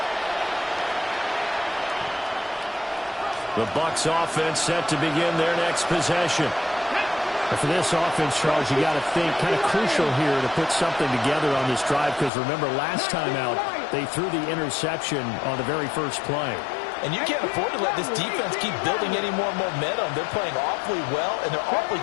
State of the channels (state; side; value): drops out; right; at 12.3 s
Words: The Bucs offense set to begin their next possession. And for this offense, Charles, you got to think kind of crucial here to put something together on this drive, because remember last time out they threw the interception on the very first play. And you can't afford to let this defense keep building any more momentum. They're playing awfully well, and they're awfully